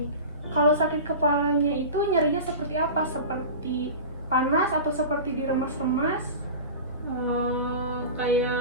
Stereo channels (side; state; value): both; inverted; correlation -0.31